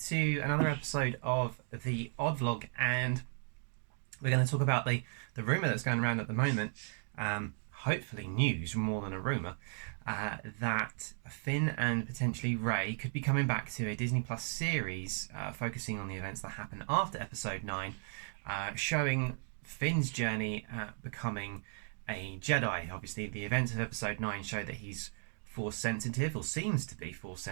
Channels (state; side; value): silent; left; 54 dB below the other